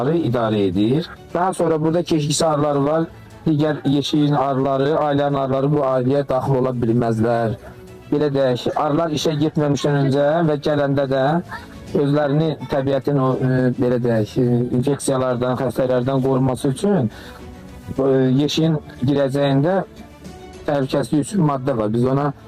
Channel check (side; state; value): both; identical; correlation 1.00